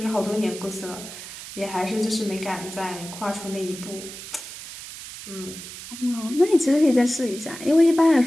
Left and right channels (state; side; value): noise; right; hiss, 12 dB below the sound